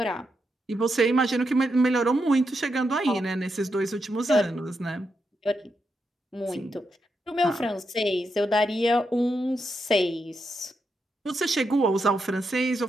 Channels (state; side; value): normal; both; correlation 0.84